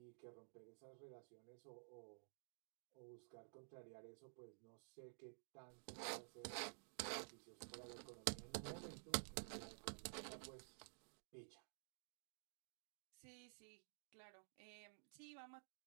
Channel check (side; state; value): left; silent; digital silence